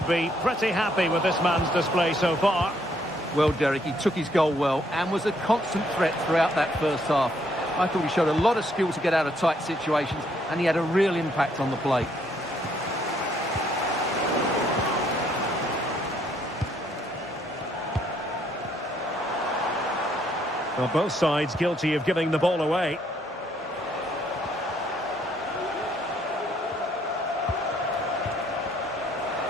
be pretty happy with this man's display so far. Well, Derek, he took his goal well and was a constant threat throughout that first half. I thought he showed a lot of skill to get out of tight situations, and he had a real impact on the play. Well, both sides guilty of giving the ball away.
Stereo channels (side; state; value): both; normal; correlation 0.69